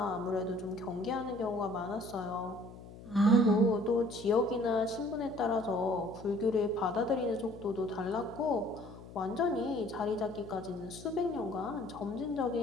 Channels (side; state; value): left; noise; hum, 16 dB below the sound